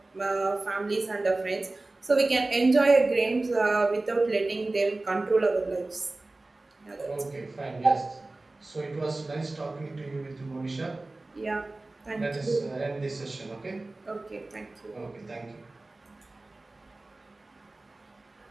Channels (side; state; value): left; quieter; 3.0 dB